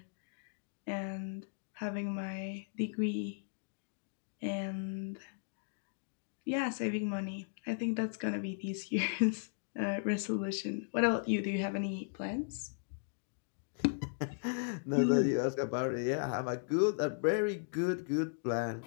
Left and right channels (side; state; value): right; silent; digital silence